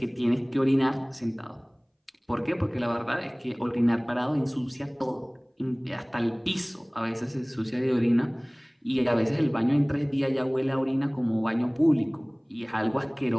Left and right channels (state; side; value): identical; both; correlation 1.00